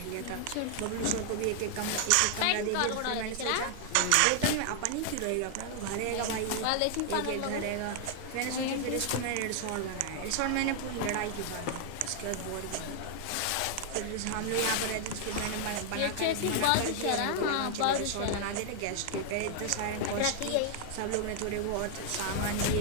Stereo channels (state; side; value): different; both; correlation 0.00